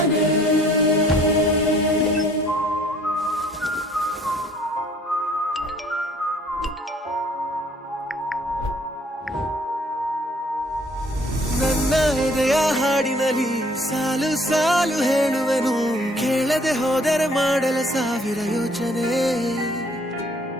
ನನ್ನ ಎದೆಯ ಹಾಡಿನಲ್ಲಿ ಸಾಲು ಸಾಲು ಹೇಳುವೆನು ಕೇಳದೆ ಹೋದರೆ ಮಾಡಲ ಸಾವಿರ ಯೋಚನೆ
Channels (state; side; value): normal; both; correlation 0.59